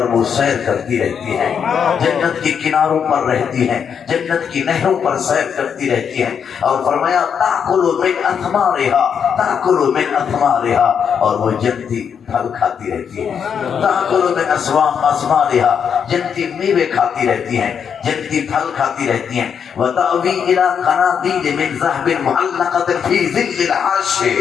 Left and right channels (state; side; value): quieter; right; 7.3 dB